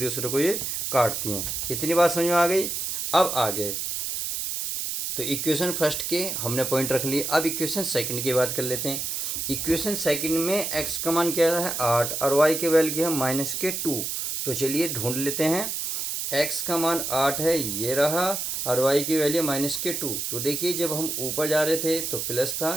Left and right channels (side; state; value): right; noise; hiss, 3 dB below the sound